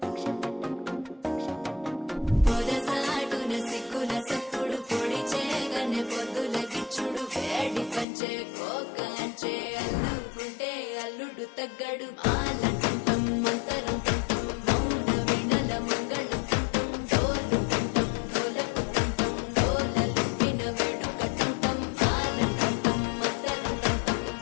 పొదసాటున సిక్కుల సప్పుడు పొడి చేయగానే పొద్దుల గిచ్చుడు వేడి పంచే కోకాంచే అల్లుకుంటే అల్లుడు తగ్గడు ఆలంటం మంతరం తంటం మౌన వినల మంగళం తంటం డోలు తంటం డోలకు తంటం డోలలు విన వేడుక తంటం ఆలంటం మంతరం తంటం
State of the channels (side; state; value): right; drops out; at 8.1 s